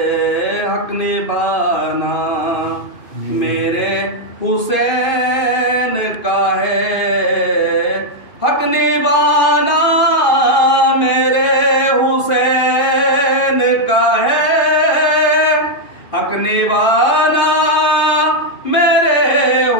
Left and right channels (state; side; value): late; right; 2.5 ms